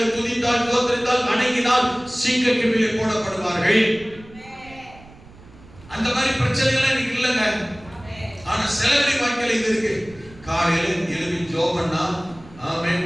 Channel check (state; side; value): noise; right; rumble, 22 dB below the sound